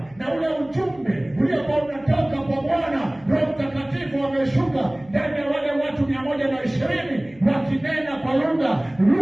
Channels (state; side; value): noise; left; hum, 27 dB below the sound